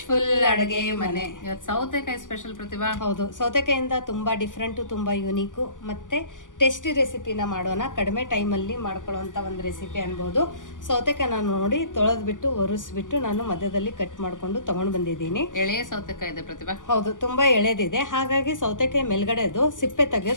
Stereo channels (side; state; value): right; late; 0.88 ms